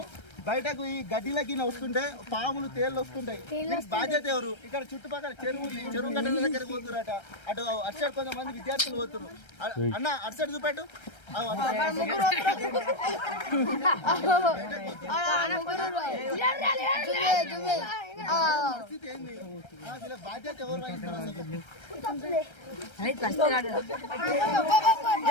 బయటకు ఈ గడ్డిలకి వస్తుంటే పాములు తేళ్లు వస్తుంటాయి. బాధ్యత ఎవరు? ఇక్కడ చుట్టుపక్కల చెరువు గడ్డల దగ్గరికి పోతురట. అటు అటు కొంతమంది విద్యార్థులు పోతున్నారు. అన్న అటు సైడ్ చూపెట్టు. పరిస్థితి ఏంది? బాధ్యత ఎవరు వహిస్తారు?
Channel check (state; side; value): late; right; 1.3 ms